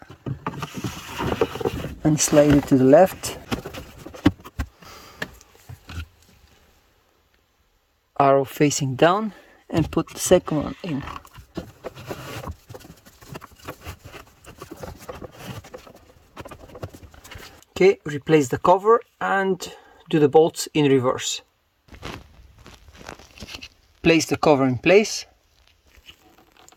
and slide it to the left. Arrow facing down and put the second one in. Okay, replace the cover and do the bolts in reverse. Place the cover in place.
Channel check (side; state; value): both; identical; correlation 1.00